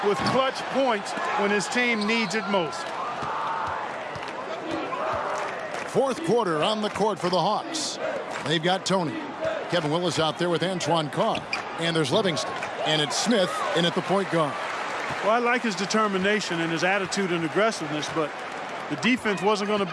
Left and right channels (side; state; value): both; identical; correlation 1.00